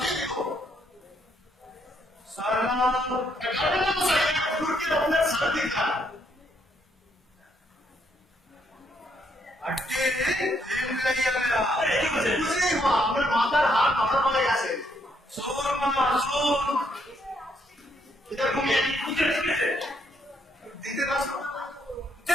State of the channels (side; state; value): both; normal; correlation 0.73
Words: देखो সালাম গার্ডেন মশাই হুজুরকে আপনার সাথ দিতা আটকে প্রেম লাইয়া গেলা বুঝলি মা আপনার মাথার হাত আমার পড়ে গেছে সোর মামা সোর এটা ঘুমিয়ে বুঝে শিখেছে দিতে পারছো